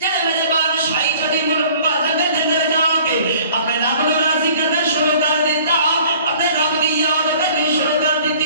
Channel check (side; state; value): both; inverted; correlation -0.52